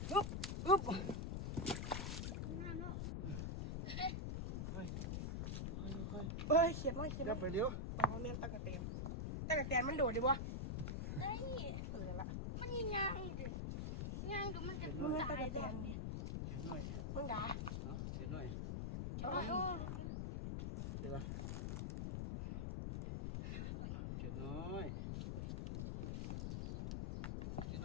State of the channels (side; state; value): left; noise; rumble, 2 dB below the sound